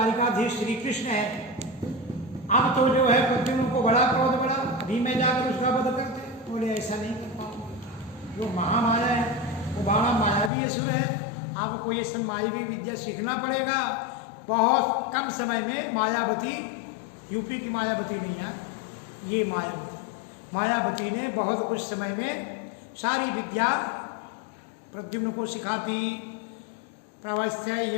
श्री कृष्ण है। अब तो जो है प्रद्युम्न को बड़ा क्रोध बढ़ा, अभी मैं जाकर उसका वध करते, बोले ऐसा नहीं कर पाऊंगा, जो महामाया है वो बड़ा मायावी असुर है, आपको ये सब मायावी विद्या सीखना पड़ेगा। बहुत कम समय में मायावती, यूपी की मायावती नहीं है, ये मायावती ने बहुत कुछ समय में सारी विद्या प्रद्युम्न को सिखाती।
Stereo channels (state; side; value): drops out; right; at 10.5 s